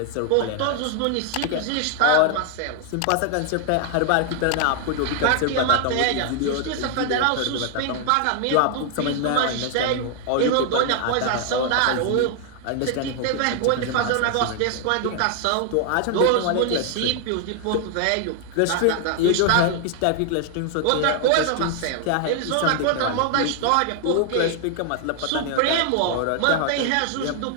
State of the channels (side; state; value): both; different; correlation 0.00